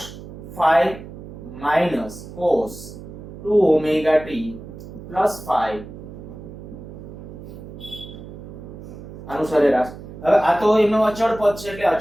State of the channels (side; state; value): right; noise; hum, 13 dB below the sound